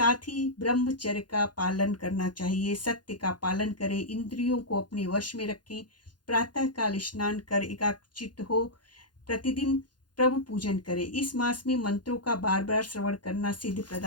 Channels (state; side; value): late; right; 0.70 ms